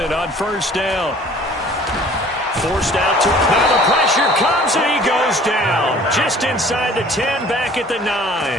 on first down. Forced out to him. Now the pressure comes, and he goes down. Just inside the 10, back at the 9.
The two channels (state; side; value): normal; both; correlation 0.50